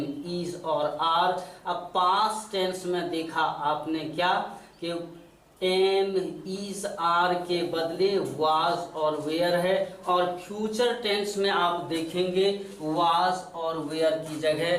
इज और आर। अब पास्ट टेंस में देखा आपने क्या कि एम, इज, आर के बदले वाज और वेयर है। और फ्यूचर टेंस में आप देखेंगे वाज और वेयर की जगह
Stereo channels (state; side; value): identical; both; correlation 1.00